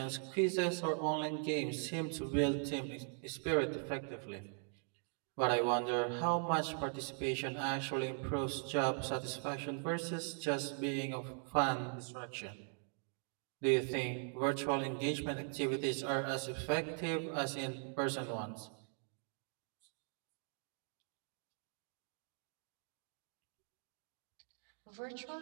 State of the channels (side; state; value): left; silent; 51 dB below the other